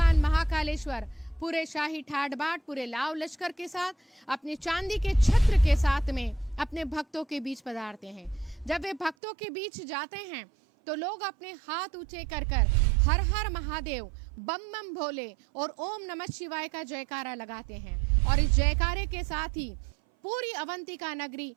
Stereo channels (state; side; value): drops out; left; at 9.2 s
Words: महाकालेश्वर पूरे शाही ठाट बाट, पूरे लाव लश्कर के साथ, अपने चांदी के छत्र के साथ में अपने भक्तों के बीच पधारते हैं। जब वे भक्तों के बीच जाते हैं तो लोग अपने हाथ ऊंचे कर कर हर हर महादेव, बम बम भोले और ओम नमः शिवाय का जयकारा लगाते हैं। और इस जयकारे के साथ ही पूरी अवंतिका नगरी